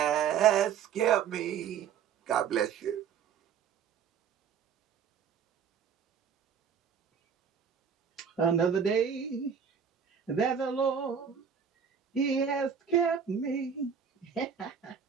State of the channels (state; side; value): quieter; left; 7.4 dB